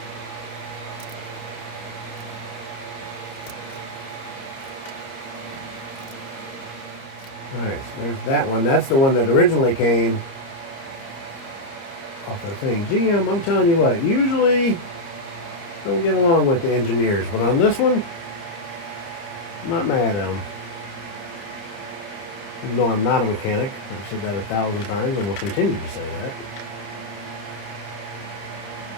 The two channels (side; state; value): right; late; 30 ms